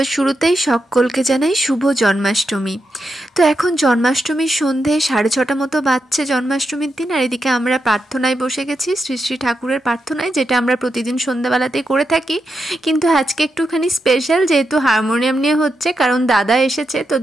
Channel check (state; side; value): normal; both; correlation 0.85